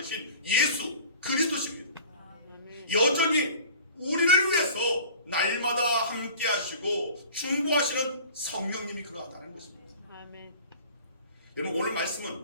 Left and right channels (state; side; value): inverted; both; correlation -0.43